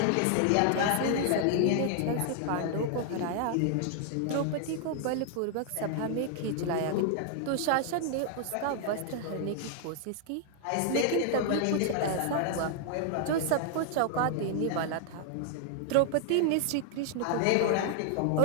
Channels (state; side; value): different; both; correlation 0.00